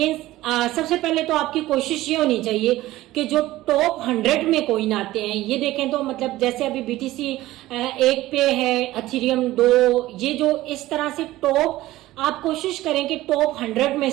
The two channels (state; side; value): quieter; left; 16.5 dB